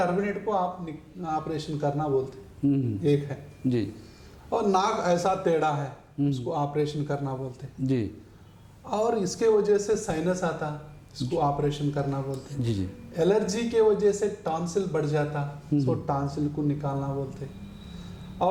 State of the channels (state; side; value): identical; both; correlation 1.00